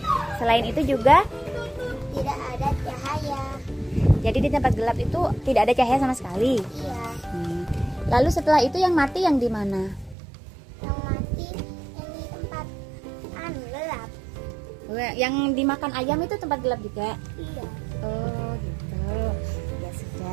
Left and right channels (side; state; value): left; drops out; at 10.2 s